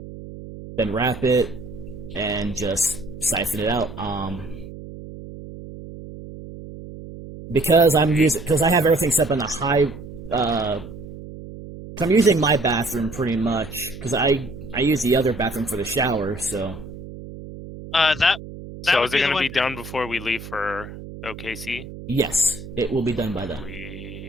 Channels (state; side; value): noise; right; hum, 13 dB below the sound